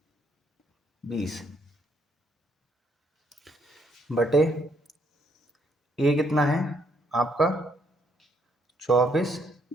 बटे ए कितना है आपका 24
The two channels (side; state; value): both; normal; correlation 0.71